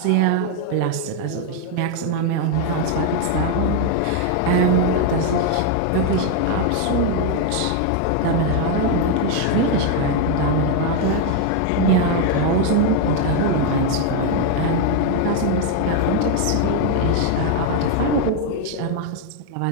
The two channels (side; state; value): both; different; correlation 0.01